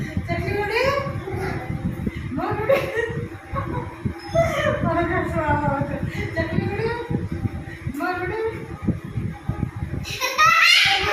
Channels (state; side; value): identical; both; correlation 1.00